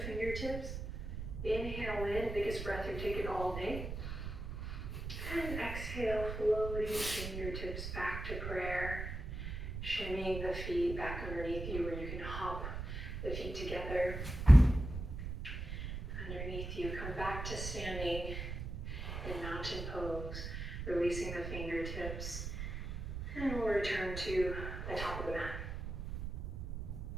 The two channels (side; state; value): right; noise; rumble, 6 dB below the sound